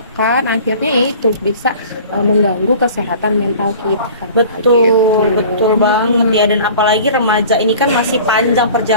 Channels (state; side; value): inverted; both; correlation -0.43